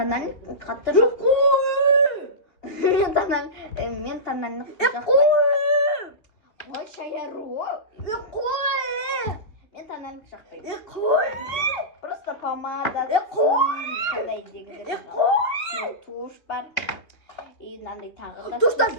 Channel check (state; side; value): late; right; 2.7 ms